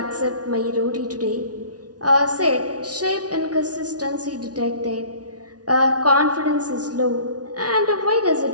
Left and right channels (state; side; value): late; left; 0.68 ms